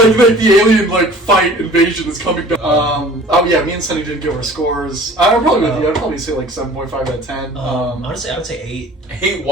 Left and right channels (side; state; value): both; normal; correlation 0.47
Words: the alien like fight invasion is coming down. Oh yeah, me and Sunny didn't give our scores. I'm probably with you. I'd probably say like 7.5 out of 10. Honestly, I would say 8. Hey,